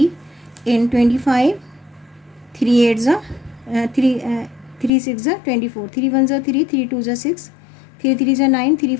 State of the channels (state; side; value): drops out; right; at 4.9 s